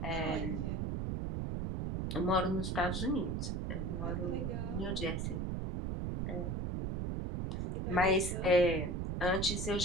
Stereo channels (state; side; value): noise; right; rumble, 1 dB below the sound